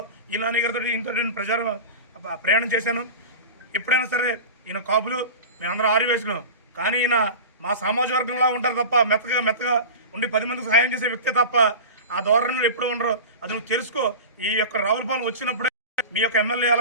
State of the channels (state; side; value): inverted; both; correlation -0.30